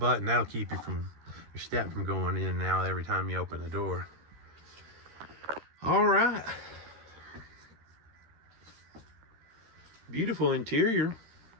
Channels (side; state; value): left; late; 13 ms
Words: That'll keep you from your step from going in and out every time you open the door. All right. Beautiful interior.